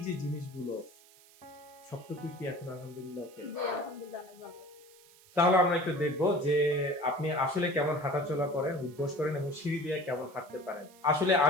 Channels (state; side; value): noise; right; hiss, 25 dB below the sound